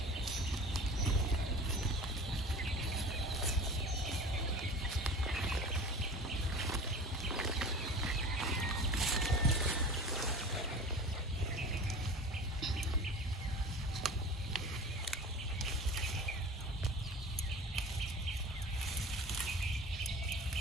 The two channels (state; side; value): normal; both; correlation 0.38